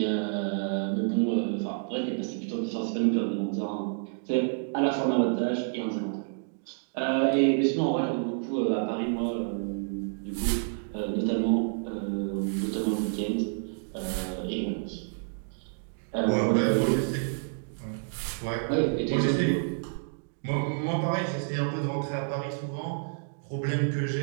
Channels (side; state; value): left; silent; digital silence